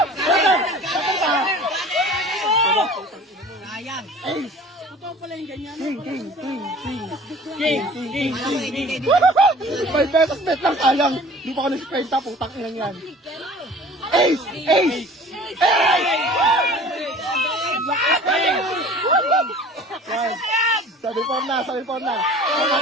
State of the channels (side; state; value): both; normal; correlation 0.45